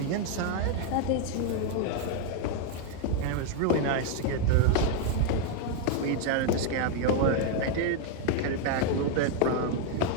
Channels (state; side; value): different; both; correlation 0.01